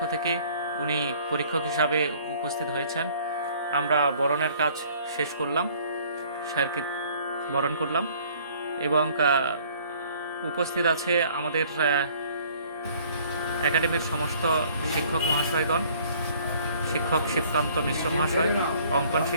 থেকে উনি পরীক্ষক হিসাবে উপস্থিত হয়েছেন। আমরা বরণের কাজ শেষ করলাম, স্যারকে বরণ করলাম এবং উপস্থিত আছে আমাদের একাডেমির সমস্ত শিক্ষক মহাশয়গণ, শিক্ষক শিবকান্ত মিশ্র মহাশয়, অঙ্কন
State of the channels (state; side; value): inverted; both; correlation -0.56